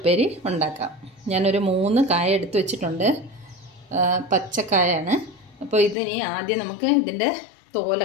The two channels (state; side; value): drops out; right; at 6.0 s